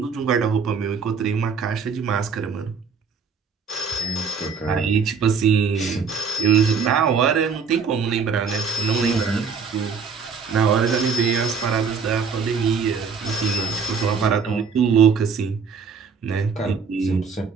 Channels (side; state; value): left; quieter; 5.7 dB